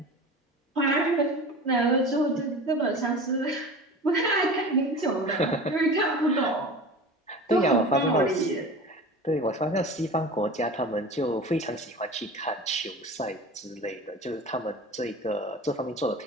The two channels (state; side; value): normal; both; correlation 0.35